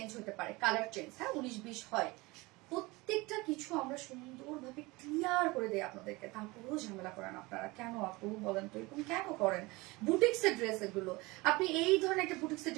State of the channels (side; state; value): left; quieter; 23.0 dB